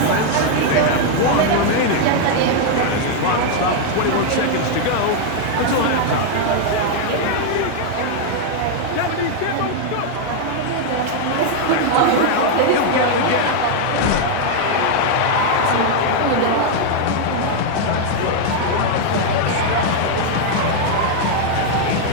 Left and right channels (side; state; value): both; different; correlation 0.00